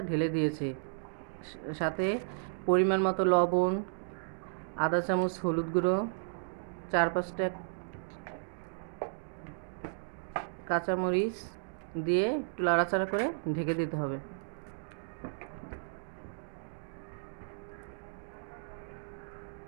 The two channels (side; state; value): left; silent; digital silence